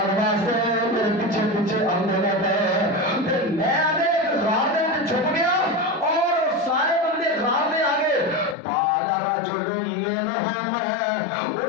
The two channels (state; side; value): drops out; right; at 8.6 s